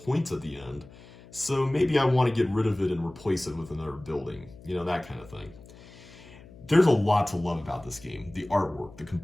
points at the end. So maybe I want to get rid of it and replace it with another building, that kind of thing. There's a lot to love about this game. The artwork, the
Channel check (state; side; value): noise; left; hum, 21 dB below the sound